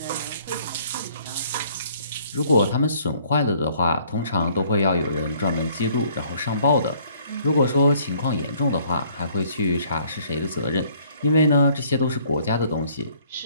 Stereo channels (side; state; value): both; inverted; correlation -0.61